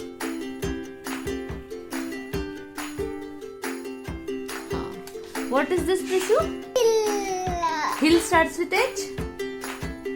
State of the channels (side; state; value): both; identical; correlation 1.00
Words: What is this, Prishu? Hill starts with H?